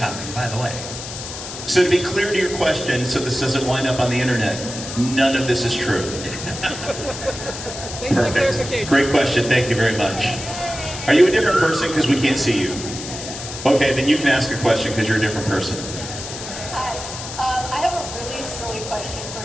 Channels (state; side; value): noise; left; hiss, 9 dB below the sound